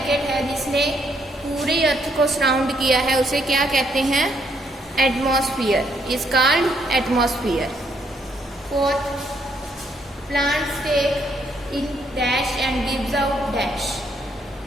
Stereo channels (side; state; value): both; normal; correlation 0.72